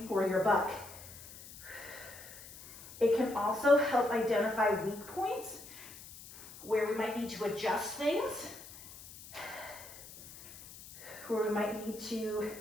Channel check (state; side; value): noise; left; hiss, 16 dB below the sound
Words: for your buck. It can also help identify weak points where we might need to adjust things, where we might need to